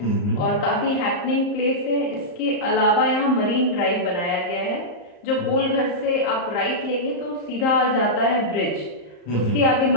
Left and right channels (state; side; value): late; right; 34 ms